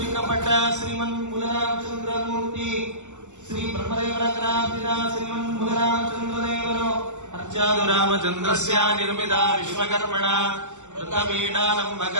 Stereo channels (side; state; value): left; late; 0.84 ms